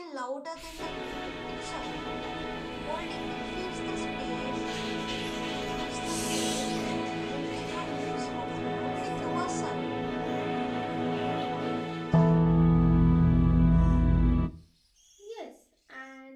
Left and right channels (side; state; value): both; identical; correlation 1.00